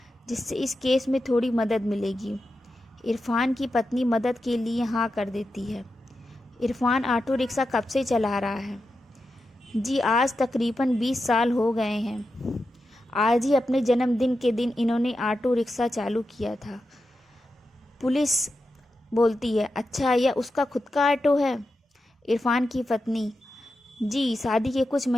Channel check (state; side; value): normal; both; correlation 0.89